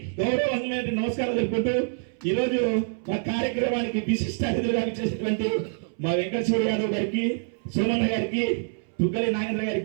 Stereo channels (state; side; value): silent; left; 61 dB below the other